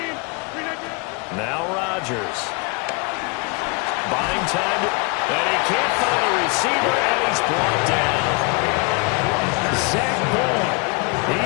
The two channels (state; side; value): quieter; right; 29.9 dB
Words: Now Rodgers. Buying time, and he can't find a receiver, and he's brought down. Zach Bourne.